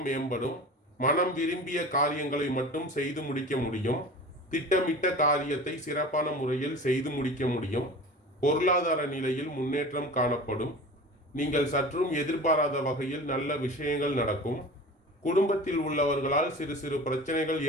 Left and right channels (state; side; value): normal; both; correlation 0.37